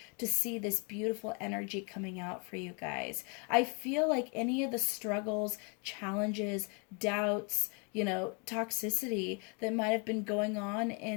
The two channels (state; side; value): quieter; right; 35.7 dB